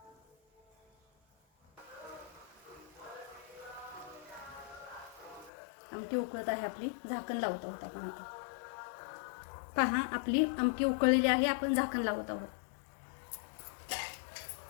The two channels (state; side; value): drops out; right; at 5.5 s